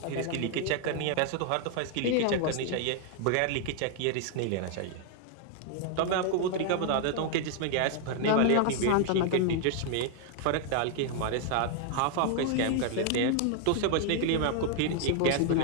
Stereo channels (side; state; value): both; different; correlation 0.00